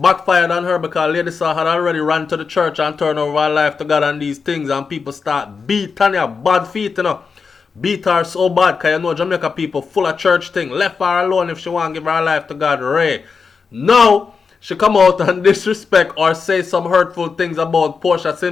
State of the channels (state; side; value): quieter; right; 5.3 dB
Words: on her because Lady Saw had already ran to the church and turned over her life to God and these things, and people start beat Tanya bad feet, Beat her so bad because Jamaica people full of church thing. Left her alone if she want to give her life to God. Ray. Now she come out and disrespect or say some hurtful things about Portia